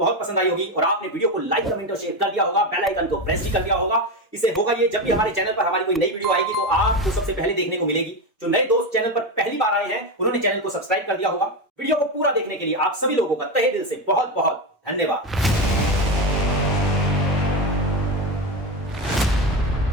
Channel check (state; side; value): normal; both; correlation 0.16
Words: पसंद आई होगी और आपने वीडियो को लाइक, कमेंट और शेयर कर दिया होगा, बेल आइकन को प्रेस भी कर दिया होगा। इसे होगा ये जब भी हमारे चैनल पर हमारी कोई नई वीडियो आएगी तो आपको सबसे पहले देखने को मिलेगी। जो नए दोस्त चैनल पर पहली बार आए हैं उन्होंने चैनल को सब्सक्राइब कर दिया होगा। वीडियो को पूरा देखने के लिए आप सभी लोगों का तहे दिल से बहुत बहुत धन्यवाद।